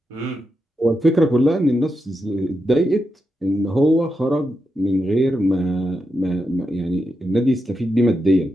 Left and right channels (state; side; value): normal; both; correlation 0.86